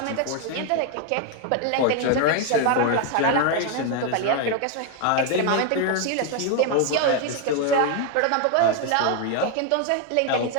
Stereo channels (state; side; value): different; both; correlation 0.01